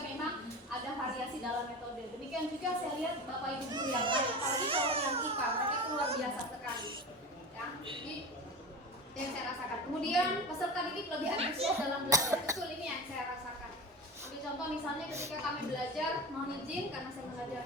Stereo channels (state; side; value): normal; both; correlation 0.29